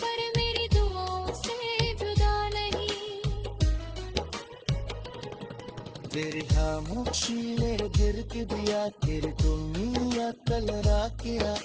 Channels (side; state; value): both; identical; correlation 1.00